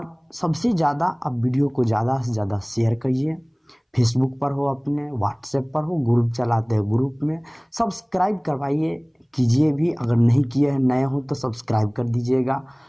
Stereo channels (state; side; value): identical; both; correlation 1.00